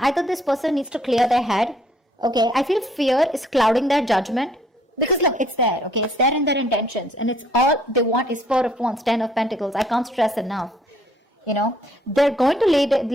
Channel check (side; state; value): both; normal; correlation 0.64